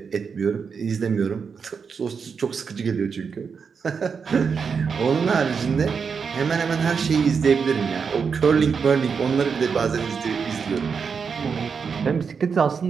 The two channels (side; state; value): left; quieter; 5.9 dB